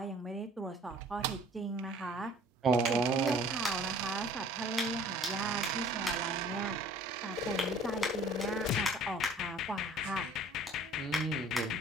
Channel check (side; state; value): both; normal; correlation 0.51